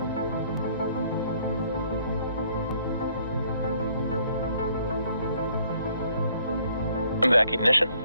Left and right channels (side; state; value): both; inverted; correlation -0.64